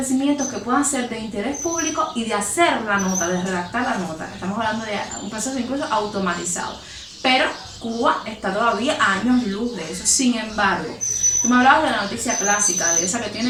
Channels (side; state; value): both; identical; correlation 1.00